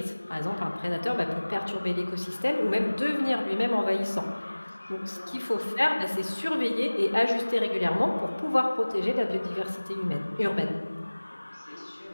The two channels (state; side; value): inverted; both; correlation -1.00